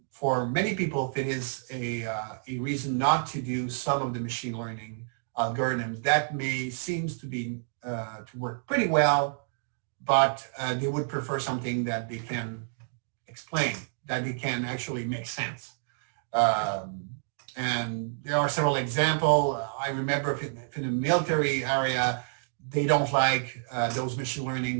for many people, it is a reason not to do some of the machine learning algorithms that seems to be to work pretty well, but they would prefer something that they can explain, that they can actually make sense. And there are several examples. I remember if in the military area, they don't like those machine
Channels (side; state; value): left; silent; digital silence